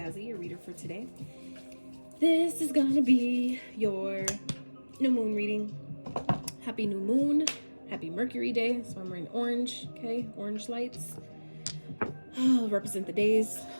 your reader for today. This is gonna be your new moon reading. Happy new moon. Happy Mercury day. So I'm wearing orange, okay? Orange lights. Represent the days,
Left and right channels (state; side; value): inverted; both; correlation -1.00